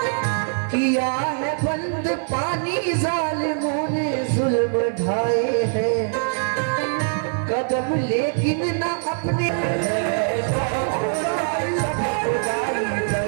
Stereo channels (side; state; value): left; silent; 60 dB below the other